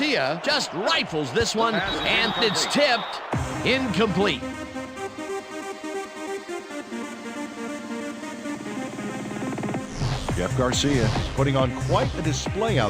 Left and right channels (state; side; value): identical; both; correlation 1.00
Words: just rifles this one, and it's tipped. Incomplete. Jeff Garcia is putting on quite a display